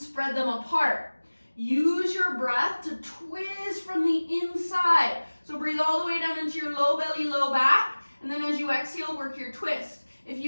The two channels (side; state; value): both; inverted; correlation -1.00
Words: them apart. Use your breath to twist from the inside. So breathe all the way down into your low belly, low back, and then as you exhale, work your twist. If